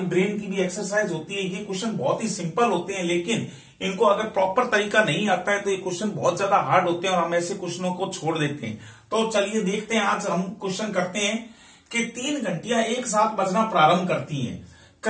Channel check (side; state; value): both; identical; correlation 1.00